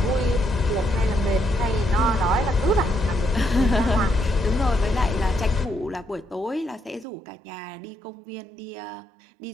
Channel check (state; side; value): drops out; left; at 7.1 s